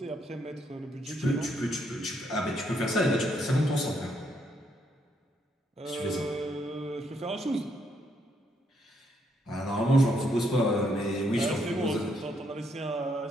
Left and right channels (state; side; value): normal; both; correlation 0.74